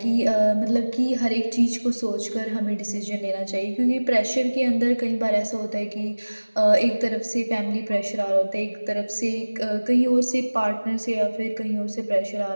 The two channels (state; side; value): inverted; both; correlation -1.00